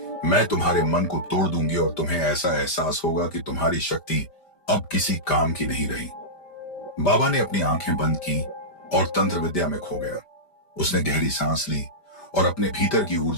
मैं तुम्हारे मन को तोड़ दूंगी और तुम्हें ऐसा एहसास होगा कि तुम्हारी शक्ति अब किसी काम की नहीं रही। बाबा ने अपनी आंखें बंद की और तंत्र विद्या में खो गया। उसने गहरी सांस ली और अपने भीतर की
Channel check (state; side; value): late; right; 5.1 ms